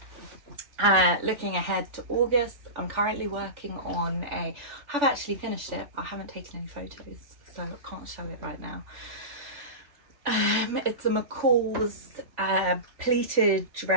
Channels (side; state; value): left; late; 3.5 ms